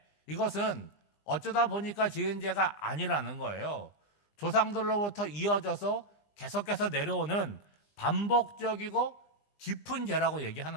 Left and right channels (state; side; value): late; right; 20 ms